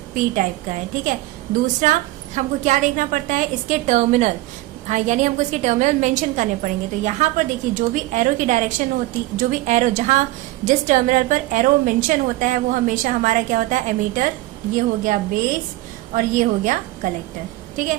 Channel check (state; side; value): quieter; left; 17.7 dB